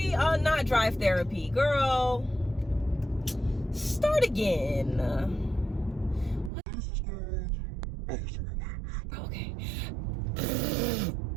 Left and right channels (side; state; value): left; drops out; at 6.5 s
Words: Not Drive Therapy, girl. Start again. Okay.